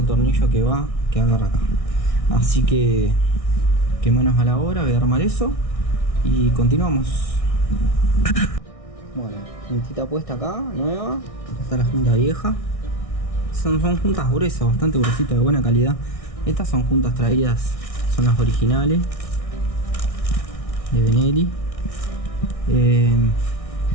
tornillo que agarra acá. Así que manos a la obra, voy a armar eso y continuamos. Bueno, juntita puesta acá, nueva. Acá está la junta vieja. Son juntas gruesas, bastante gruesitas, de buena calidad. Estas son juntas traídas, son las originales de Benelli.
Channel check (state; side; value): late; right; 1.6 ms